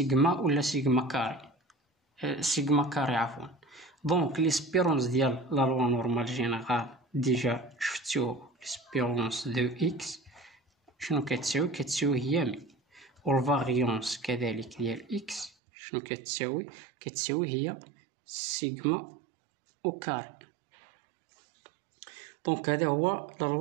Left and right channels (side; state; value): left; drops out; at 15.5 s